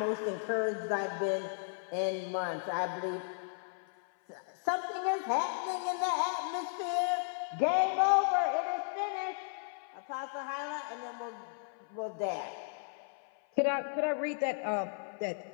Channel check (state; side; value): silent; right; 55 dB below the other